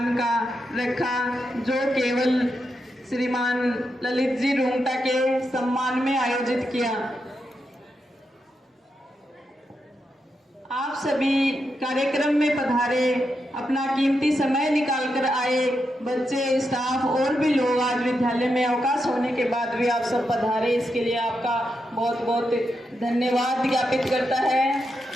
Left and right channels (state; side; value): normal; both; correlation 0.85